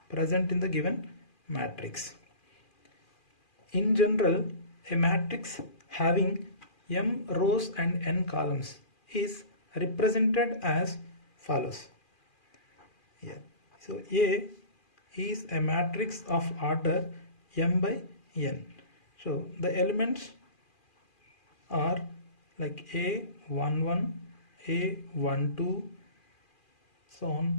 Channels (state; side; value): late; right; 2.4 ms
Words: present in the given matrix. In general, a matrix having m rows and n columns is represented as follows. Yeah. So A is a matrix of order m by n. So the elements are like A11, A12, so on,